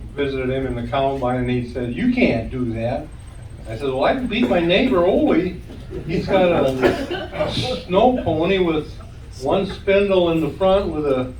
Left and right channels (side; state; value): both; identical; correlation 1.00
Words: visited him in the combine, and he said, "You can't do that." I said, "Well, I can beat my neighbor Ole. He's got a snow pony with one spindle in the front with a